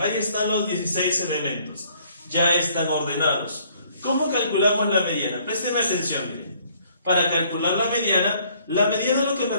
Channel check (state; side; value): inverted; both; correlation -0.62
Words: están los 16 elementos. Ya están ordenados. ¿Cómo calculamos la mediana? Presten atención, miren. Para calcular la mediana lo que me